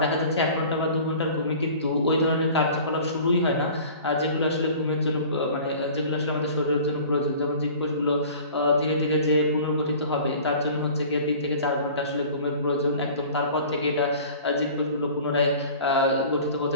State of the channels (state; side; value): inverted; both; correlation -0.44